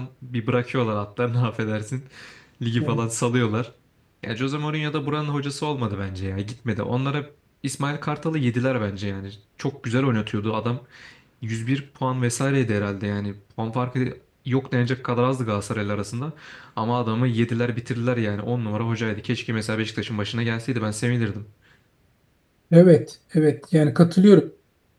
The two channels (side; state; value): both; identical; correlation 1.00